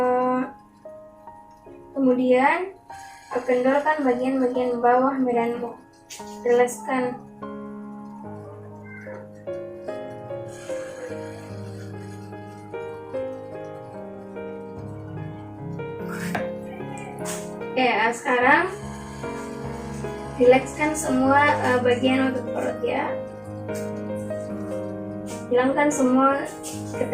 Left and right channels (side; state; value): both; identical; correlation 1.00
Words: Kemudian kendorkan bagian-bagian bawah badanmu. Rilekskan. Oke, sekarang rilekskan semua bagian otot perut ya. Hilangkan semua